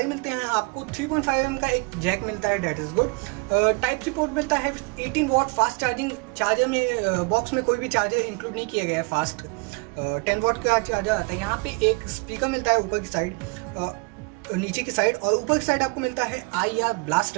मिलते हैं आपको। 3.5mm का एक जैक मिलता है, that is good. Type C port मिलता है, 18 वॉट फास्ट चार्जिंग। चार्जर में बॉक्स में कोई भी चार्जर इंक्लूड नहीं किया गया है फास्ट, 10 वॉट का चार्जर आता है। यहाँ पे एक स्पीकर मिलता है ऊपर की साइड, नीचे की साइड, और ऊपर की साइड आपको मिलता है IR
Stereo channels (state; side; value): quieter; left; 29.8 dB